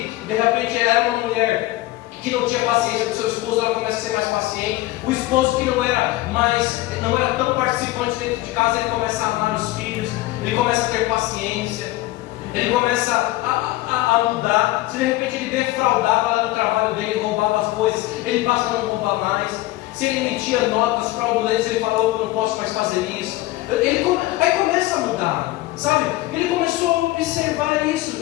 de repente era uma mulher que não tinha paciência com seu esposo, ela começa a ser mais paciente. O esposo que não era tão participante dentro de casa, ele começa a amar os filhos, ele começa a ter paciência, ele começa a mudar. Se de repente ele defraudava lá no trabalho dele, roubava as coisas, ele passa a não roubar mais. Se ele emitia notas fraudulentas, ele falou, eu não posso mais fazer isso. Aí começa a mudar, sabe? Ele começou a observar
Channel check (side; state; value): right; quieter; 17.9 dB